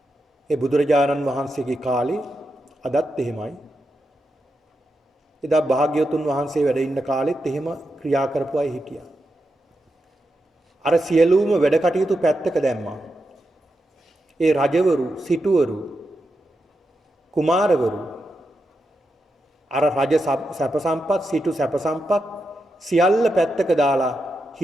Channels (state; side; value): normal; both; correlation 0.87